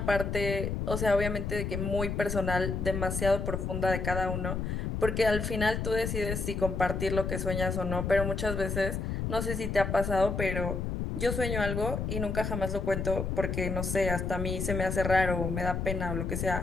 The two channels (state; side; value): noise; left; rumble, 2 dB below the sound